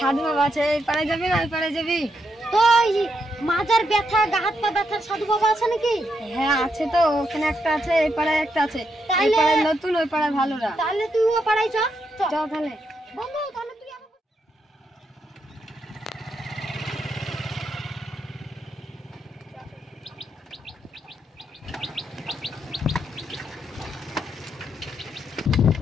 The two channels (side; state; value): both; normal; correlation 0.80